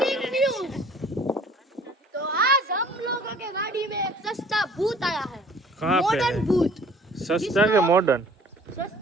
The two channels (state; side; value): normal; both; correlation 0.53